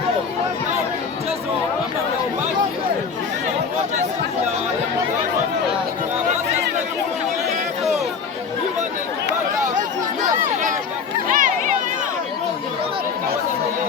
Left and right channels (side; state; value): right; quieter; 5.9 dB